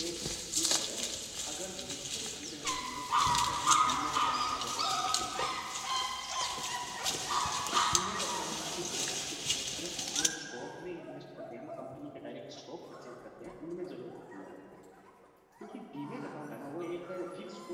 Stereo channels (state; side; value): identical; both; correlation 1.00